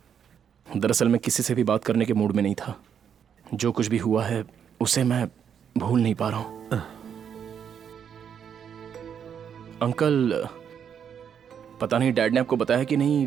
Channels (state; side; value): quieter; left; 8.0 dB